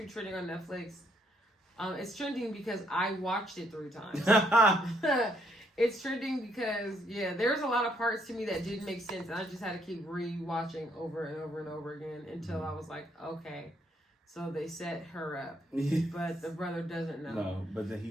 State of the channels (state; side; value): normal; both; correlation 0.71